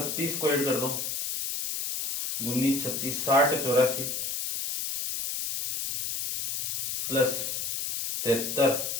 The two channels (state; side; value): noise; left; hiss, 2 dB below the sound